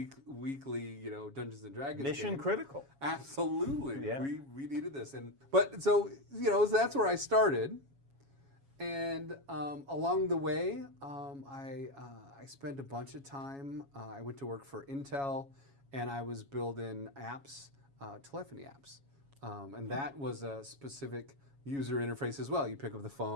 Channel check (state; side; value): late; left; 7.2 ms